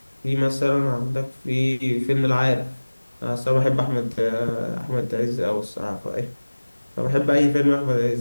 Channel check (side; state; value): both; inverted; correlation -1.00